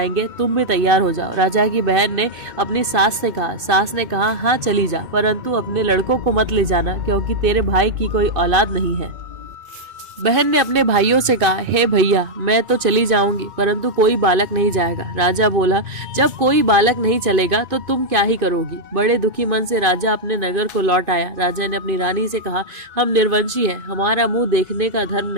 तुम भी तैयार हो जाओ। राजा की बहन ने अपनी सास से कहा। सास ने कहा, हाँ चली जा, परंतु अपने लड़कों को मत ले जाना, क्योंकि तेरे भाई की कोई औलाद नहीं है। बहन ने अपने भाइयों से कहा, हे भैया, मैं तो चली जाऊंगी, परंतु कोई बालक नहीं जाएगा। राजा बोला, जब कोई बालक नहीं चलेगा तो तुम क्या ही करोगी? बड़े दुखी मन से राजा अपने नगर को लौट आया। राजा ने अपनी रानी से कहा, हम निर्वंशी हैं, हमारा मुंह देखने का धर्म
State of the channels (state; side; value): late; left; 2.5 ms